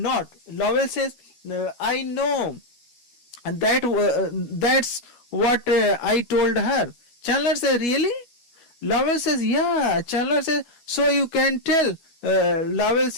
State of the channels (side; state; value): right; late; 12 ms